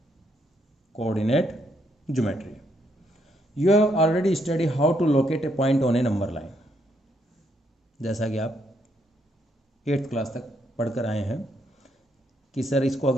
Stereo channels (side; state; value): both; normal; correlation 0.74